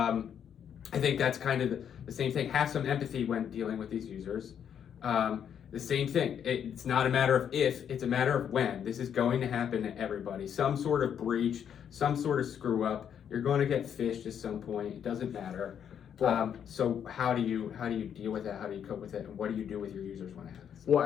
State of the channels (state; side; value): quieter; right; 8.6 dB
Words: think that's kind of the same thing. Have some empathy when dealing with these users. The same thing. It's not a matter of if, it's a matter of when. This is going to happen to everybody. Some sort of breach, some sort of screw up. You're going to get phished at some point. It doesn't matter. So how do you deal with that? How do you cope with it? And what do you do with your users when it happens?